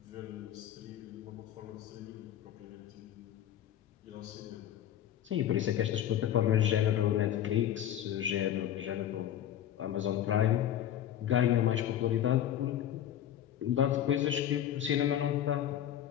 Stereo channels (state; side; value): quieter; right; 11.0 dB